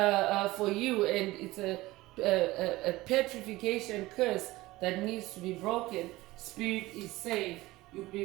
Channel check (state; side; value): quieter; left; 18.9 dB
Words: for you, and it's a petrification curse that needs to be broken. Spirit is saying you could